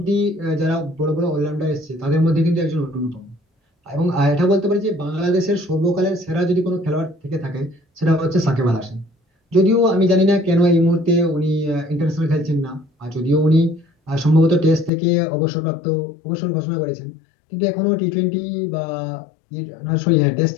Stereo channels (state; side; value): drops out; right; at 14.9 s